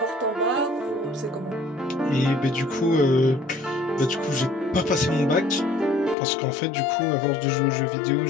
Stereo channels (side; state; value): right; drops out; at 6.2 s